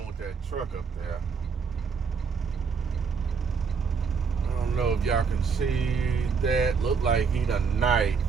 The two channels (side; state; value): left; quieter; 5.7 dB